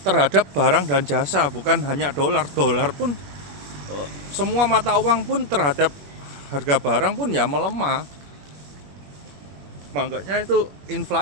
terhadap barang dan jasa, bukan hanya dolar pun, semua mata uang pun terhadap harga barang pun ya melemah. Makanya itu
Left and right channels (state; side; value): late; left; 21 ms